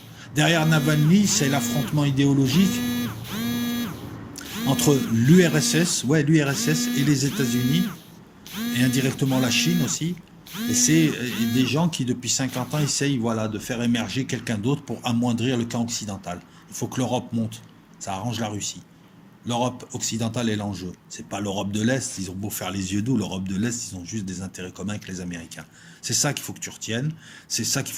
Derrière Navalny, c'est l'affrontement idéologique entre l'URSS, et les États-Unis, et indirectement la Chine aussi. Et c'est des gens qui, depuis 50 ans, essayent voilà, de faire émerger quelqu'un d'autre pour amoindrir le camp occidental. Il faut que l'Europe monte. Ça arrange la Russie. L'Europe occidentale est l'enjeu. C'est pas l'Europe de l'Est. Ils ont beau faire les yeux doux, l'Europe de l'Est, ils ont juste des intérêts communs avec les Américains. C'est ça qu'il faut que tu retiennes. C'est ça qu'il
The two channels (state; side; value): identical; both; correlation 1.00